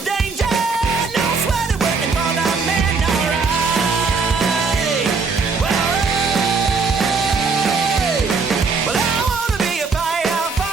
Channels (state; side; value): quieter; left; 4.7 dB